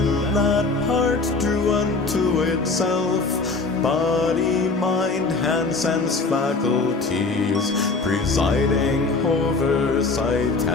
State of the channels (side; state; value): right; quieter; 3.8 dB